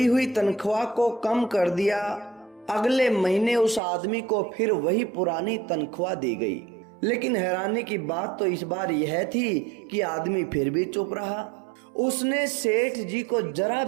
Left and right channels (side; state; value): left; drops out; at 3.8 s